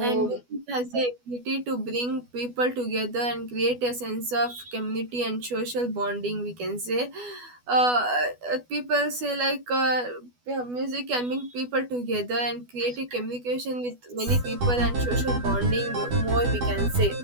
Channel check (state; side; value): late; left; 12 ms